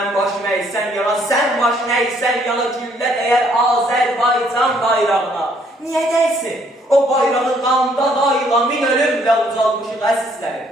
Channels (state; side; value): normal; both; correlation 0.66